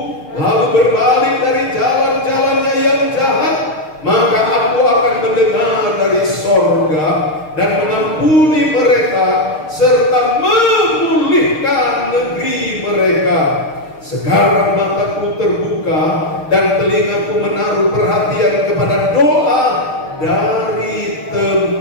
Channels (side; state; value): right; late; 6.6 ms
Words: lalu berbalik dari jalan-jalannya yang jahat, maka aku akan mendengar dari sorga dan mengampuni mereka serta memulihkan negeri mereka. Sekarang mataku terbuka dan telingaku menaruh perhatian kepada doa dari